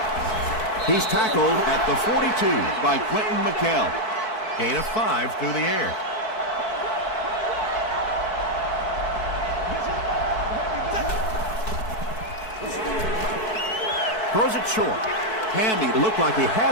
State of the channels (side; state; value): right; late; 4.6 ms